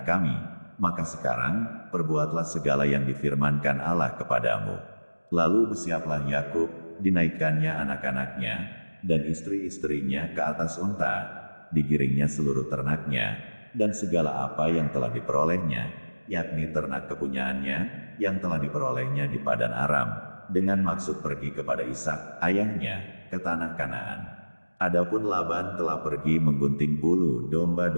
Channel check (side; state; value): both; inverted; correlation -1.00